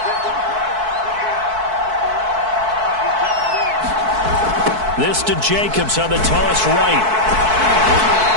This to Jacobs on the toss right.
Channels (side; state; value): left; late; 4.6 ms